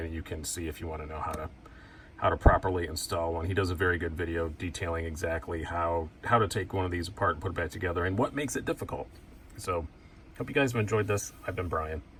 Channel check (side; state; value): both; identical; correlation 1.00